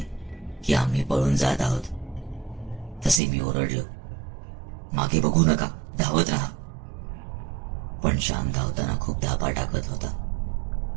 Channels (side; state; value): left; drops out; at 3.2 s